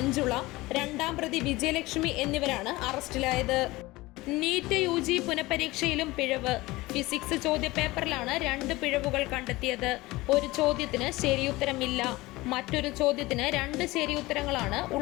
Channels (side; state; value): right; quieter; 20.2 dB